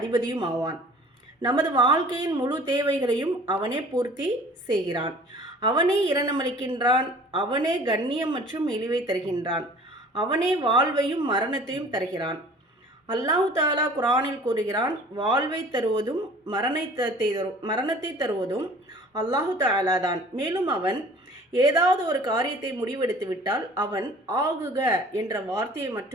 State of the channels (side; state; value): both; normal; correlation 0.48